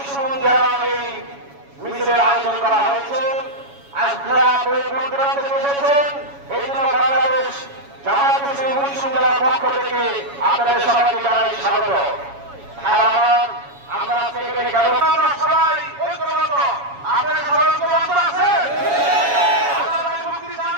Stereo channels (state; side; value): late; left; 7.2 ms